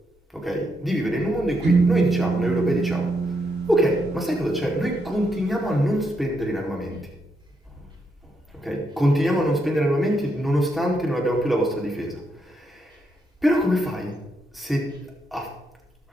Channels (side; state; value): both; normal; correlation 0.79